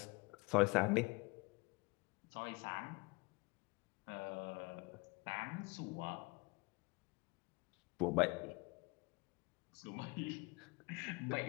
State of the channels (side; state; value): right; quieter; 27.0 dB